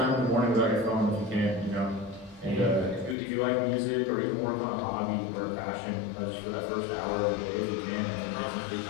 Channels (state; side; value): drops out; right; at 3.2 s